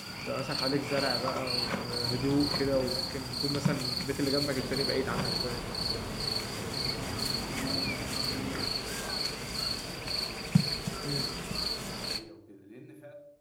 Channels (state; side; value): identical; both; correlation 1.00